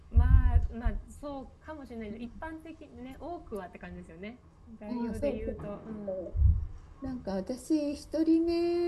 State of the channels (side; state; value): both; identical; correlation 1.00